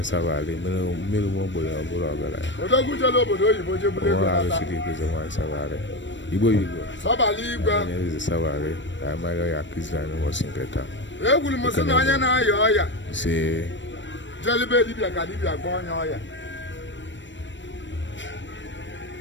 sabale mmiri mo gbo ya bụrụ ọgara ya. Odogu jelo obodo oyibo jebule ko ala siri ko wine sabale. Igbo Sabali igwe. Eze sabale. Ka ma ya kizana mo sinketa. Egwuru m sị na onye na-aya ọya si jelibe dibịa ka dibịa gwa onye ọya.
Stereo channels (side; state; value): right; late; 0.54 ms